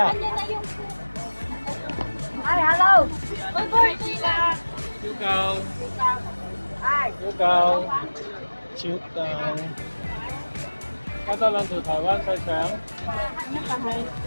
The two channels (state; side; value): inverted; both; correlation -1.00